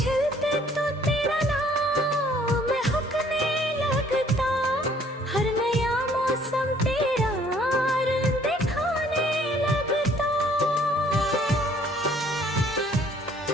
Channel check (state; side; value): normal; both; correlation 0.60